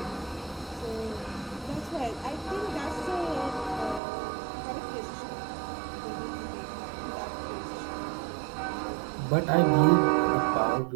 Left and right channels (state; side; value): drops out; left; at 4.0 s